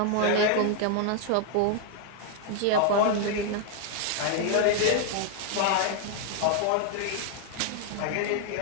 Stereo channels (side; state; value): both; different; correlation 0.00